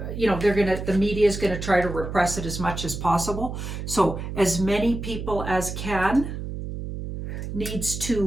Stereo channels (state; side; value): noise; right; hum, 7 dB below the sound